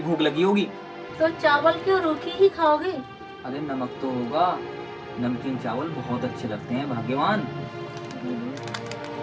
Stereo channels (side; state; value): both; identical; correlation 1.00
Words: लगी होगी। तो चावल क्यों रूखी ही खाओगे? अरे नमक तो होगा, नमकीन चावल बहुत अच्छे लगते हैं भाग्यवान।